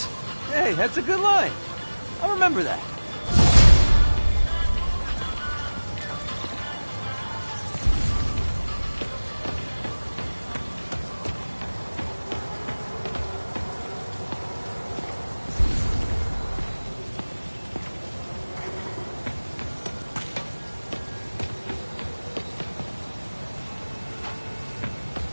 Hey, that's a good line. I'll remember that.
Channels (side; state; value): both; inverted; correlation -1.00